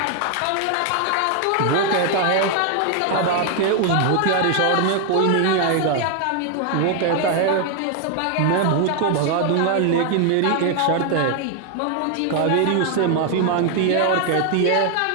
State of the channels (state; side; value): different; both; correlation 0.01